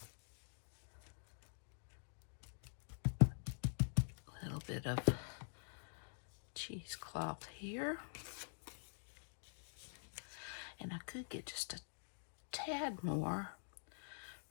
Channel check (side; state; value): right; silent; digital silence